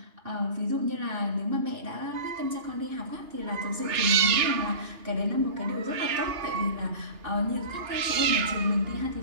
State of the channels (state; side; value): late; left; 2.9 ms